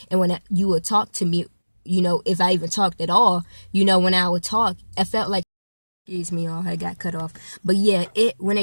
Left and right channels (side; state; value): both; inverted; correlation -1.00